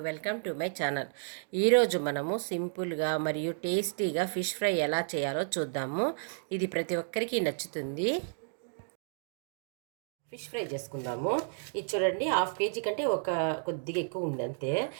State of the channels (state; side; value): silent; left; digital silence